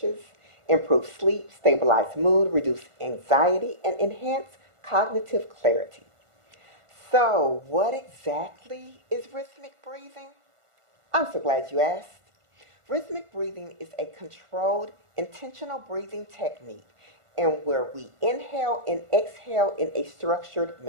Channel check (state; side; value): late; left; 1.5 ms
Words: improve sleep, stabilize mood, reduce anxiety, and enhance cognitive clarity. So, what exactly is rhythmic breathing? I'm so glad you asked. Rhythmic breathing is a controlled, intentional breathing technique in where we inhale and exhale in a structured